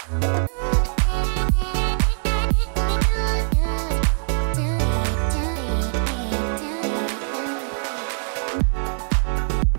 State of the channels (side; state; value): left; silent; digital silence